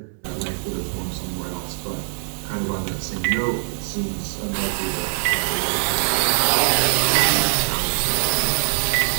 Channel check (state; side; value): silent; left; digital silence